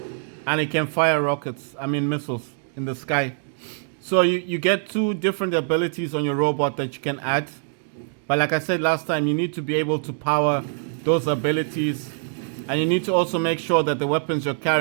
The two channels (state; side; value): silent; left; 63 dB below the other